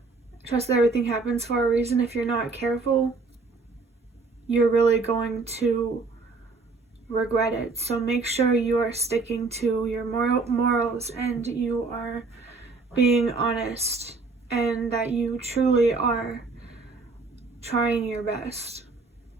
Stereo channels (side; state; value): left; quieter; 4.0 dB